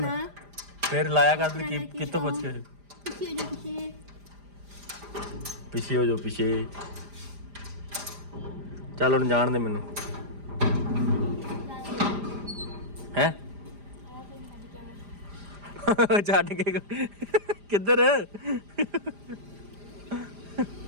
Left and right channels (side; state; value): left; late; 5.0 ms